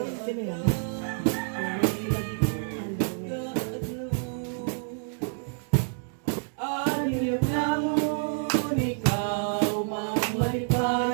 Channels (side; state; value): left; silent; digital silence